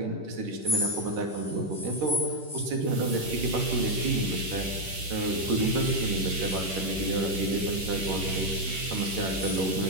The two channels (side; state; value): left; late; 11 ms